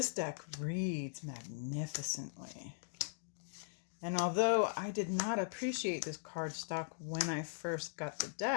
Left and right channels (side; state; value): right; silent; digital silence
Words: deck reads magnificently. And although I did not appreciate this cardstock when I first got the